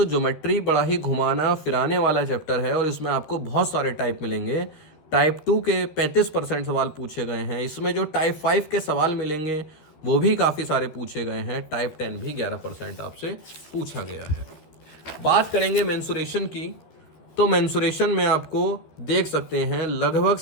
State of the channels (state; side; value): late; right; 13 ms